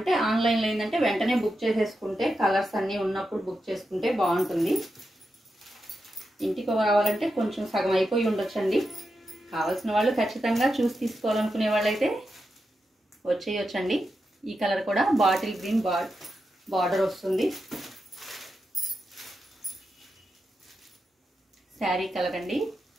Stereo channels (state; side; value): normal; both; correlation 0.88